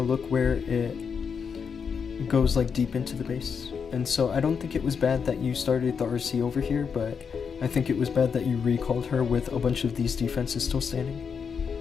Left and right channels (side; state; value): right; quieter; 6.3 dB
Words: look where it goes like deep into the base. And so I don't think it was bad that you started the RC over here, but I think it was bad that you recalled her with a bunch of these defenses still standing.